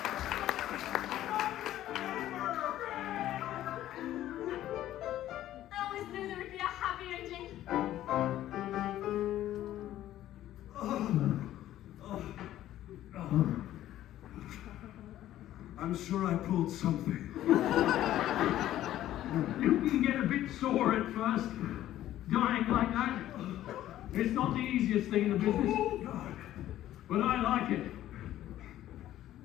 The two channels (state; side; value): quieter; right; 13.2 dB